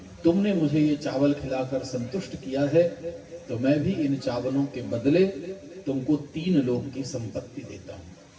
तुमने मुझे ये चावल खिलाकर संतुष्ट किया है, तो मैं भी इन चावलों के बदले तुमको 3 लोक की संपत्ति देता हूं।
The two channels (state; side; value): identical; both; correlation 1.00